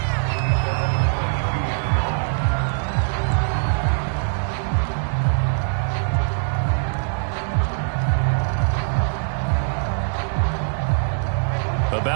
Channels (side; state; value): left; silent; digital silence